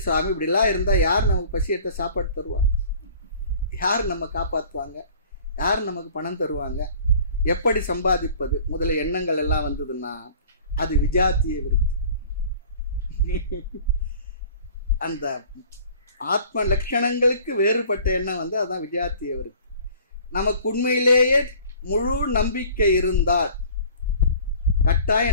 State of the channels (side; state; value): both; inverted; correlation -0.48